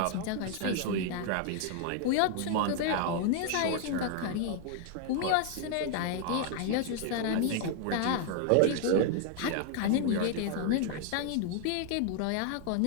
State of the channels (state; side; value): different; both; correlation 0.00